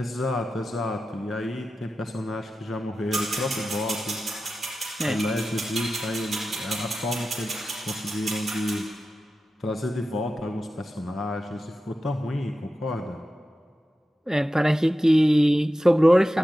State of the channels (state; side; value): normal; both; correlation 0.93